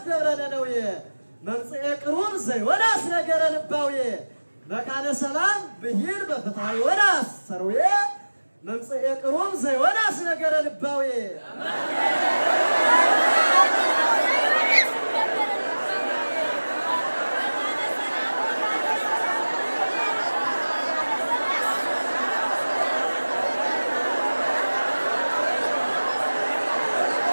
دبرنا نوية ممصئ قروب زيوناس نجر لباوية مكان سلام بهيل بفتح وناس سروية ممصئ قروب زيوناس نجر لباوية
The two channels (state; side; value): inverted; both; correlation -1.00